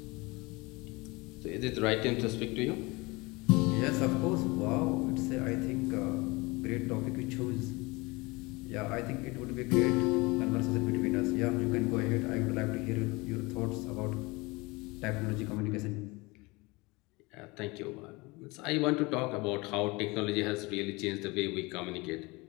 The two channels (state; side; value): quieter; right; 24.5 dB